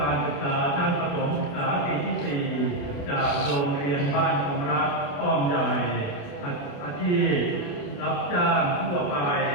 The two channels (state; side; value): late; right; 28 ms